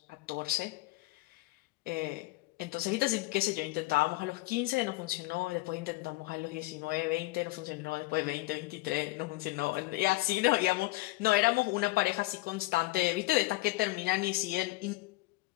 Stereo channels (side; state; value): right; quieter; 20.4 dB